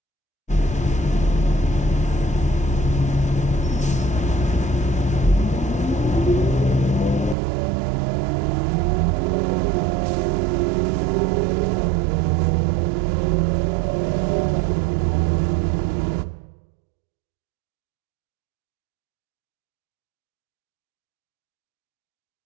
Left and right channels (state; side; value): drops out; left; at 7.4 s